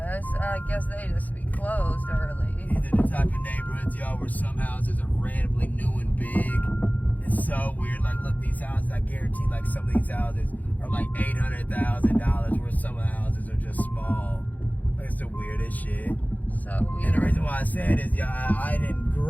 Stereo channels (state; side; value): late; right; 0.080 ms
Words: guess they just be closed early. These are the type of neighborhoods, y'all, where some houses are randomly new and big. It's so weird. Like, look, these houses, I guarantee, like, some of these houses are like $800,000, where some of the houses are just small. Like, it's the weirdest shit. So weird. And the reason why I said is, yeah, I didn't